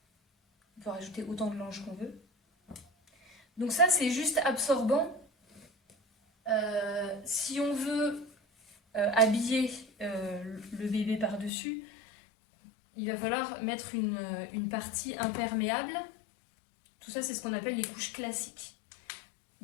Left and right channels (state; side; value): drops out; right; at 11.5 s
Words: On peut rajouter autant de langes qu'on veut. Donc ça, c'est juste absorbant. Si on veut habiller le bébé par-dessus, il va falloir mettre une partie imperméable. Tout ça, c'est ce qu'on appelle les couches classiques.